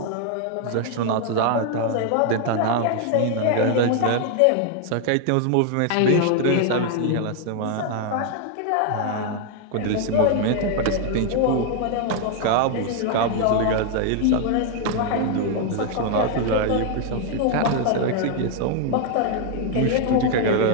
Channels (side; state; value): both; different; correlation 0.00